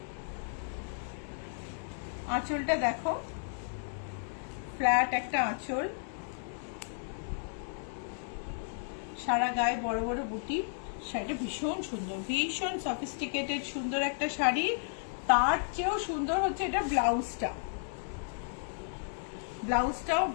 আঁচলটা দেখো ফ্ল্যাট একটা আঁচল, সারা গায়ে বড় বড় বুটি। শাড়িটা ভীষণ সুন্দর, ভীষণ সফিস্টিকেটেড সুন্দর একটা শাড়ি। তার চেয়েও সুন্দর হচ্ছে এটা ব্লাউজটা, ব্লাউজটাও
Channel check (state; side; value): silent; right; digital silence